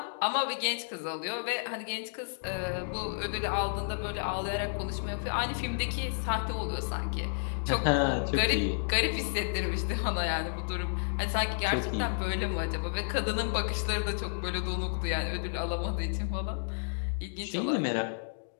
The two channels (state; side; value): silent; right; digital silence